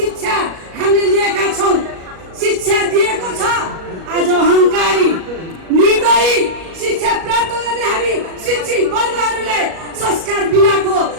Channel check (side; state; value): left; late; 37 ms